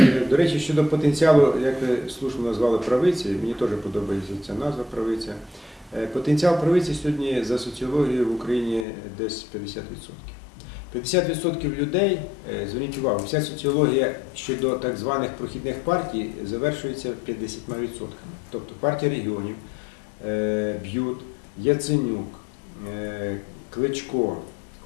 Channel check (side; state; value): right; drops out; at 8.8 s